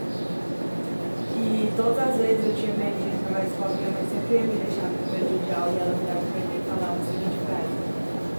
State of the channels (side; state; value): both; inverted; correlation -1.00